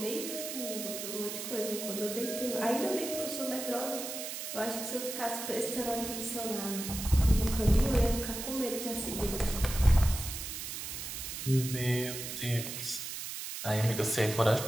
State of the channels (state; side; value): noise; right; hiss, 6 dB below the sound